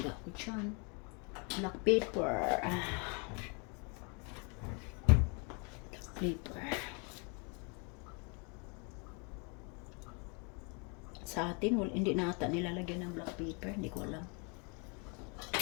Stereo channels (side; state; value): right; quieter; 34.2 dB